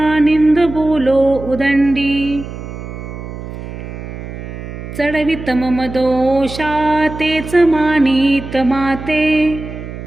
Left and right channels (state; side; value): noise; right; hum, 10 dB below the sound